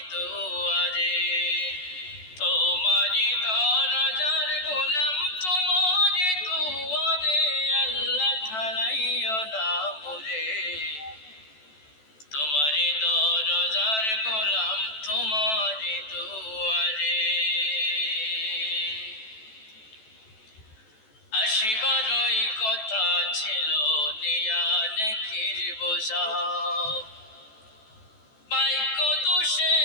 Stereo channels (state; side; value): late; right; 14 ms